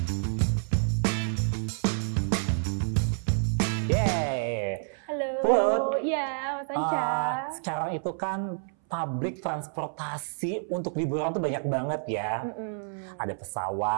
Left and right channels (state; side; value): silent; left; 59 dB below the other